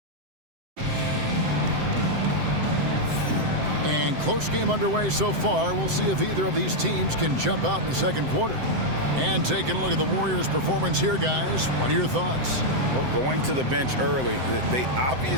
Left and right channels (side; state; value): left; late; 7.8 ms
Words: And close game underway so far. We'll see if either of these teams can jump out in the second quarter. And taking a look at the Warriors' performance here, guys, what are your thoughts? Well, going to the bench early, they